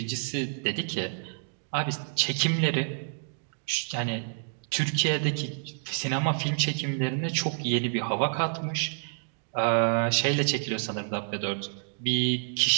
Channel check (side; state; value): left; silent; digital silence